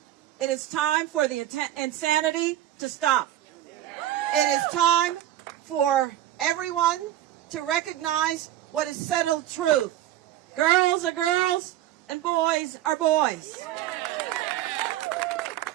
it is time for the insanity to stop. It is time for everyone to recognize what is settled truth. Girls are girls and boys are boys.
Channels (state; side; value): quieter; left; 12.8 dB